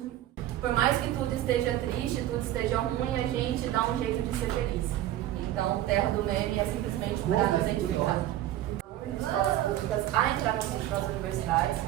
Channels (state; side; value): quieter; left; 13.6 dB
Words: Por mais que tudo esteja triste, tudo esteja ruim, a gente dá um jeito de ser feliz. Então, terra do meme é simplesmente para nos identificar. Escolas públicas a entrar nas universidades,